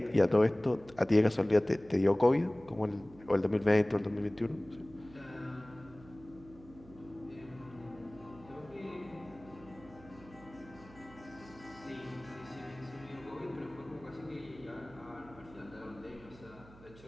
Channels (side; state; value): right; noise; hum, 21 dB below the sound